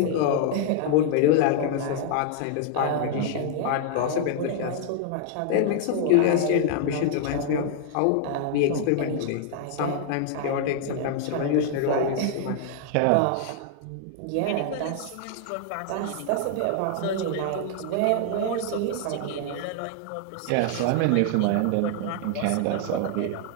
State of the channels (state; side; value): different; both; correlation 0.00